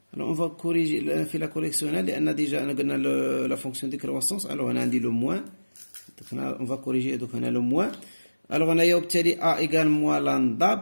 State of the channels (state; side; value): inverted; both; correlation -1.00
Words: Alors on va corriger في la correction لأن déjà أنا قلنا la fonction de croissance. alors هنا عندي le moins. donc on va corriger donc هنا le moins. alors هنايا وبالتالي a égale moins